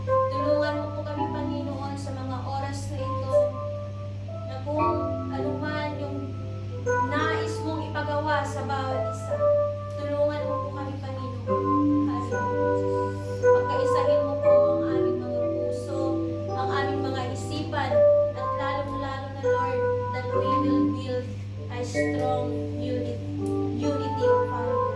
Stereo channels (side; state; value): both; identical; correlation 1.00